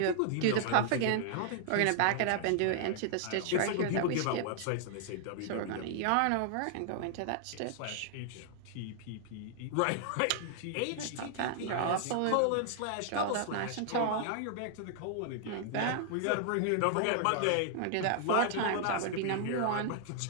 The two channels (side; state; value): both; different; correlation -0.01